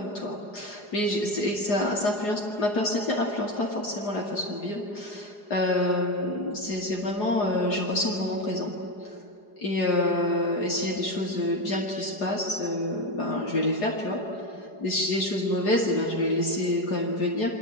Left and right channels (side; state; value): right; late; 4.9 ms